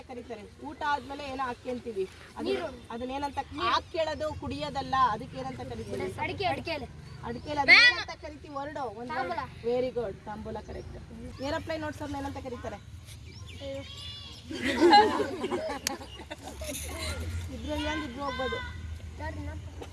ಕರೀತಾರೆ? ಊಟ ಆದ್ಮೇಲೆ ಏನೋ ಹಾಕಿ ಅಂತೀವಿ, ಅದನ್ನೇನಂತ? ಹಾಕಿ ಕೇಳೋದು ಕುಡಿಯೋದಲ್ಲ, ಅದಕ್ಕೆ ಏನಂತ ಕರಿತೀವಿ? ಅಡಿಕೆ. ಅದನ್ನೇನಂತ ಕರಿತೀವಿ? ವರ್ಡು. Very good. ತಾಂಬೂಲ ಕರೆಕ್ಟ್. ಏರೋಪ್ಲೇನ್ ನೋಡ್ಸೋರ್ನ ಏನಂತ ಕರೀತಾರೆ? ಇದ್ರಲ್ಲಿ ಇದ್ರು ಹೋಗ್ಬೋದು.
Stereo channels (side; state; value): both; identical; correlation 1.00